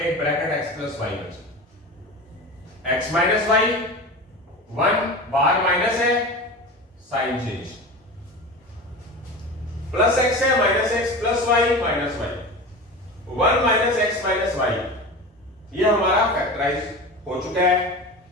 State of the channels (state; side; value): normal; both; correlation 0.30